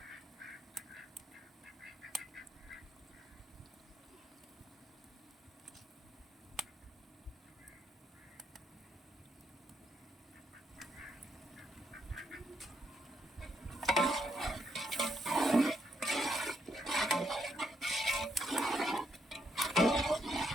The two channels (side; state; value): both; normal; correlation 0.77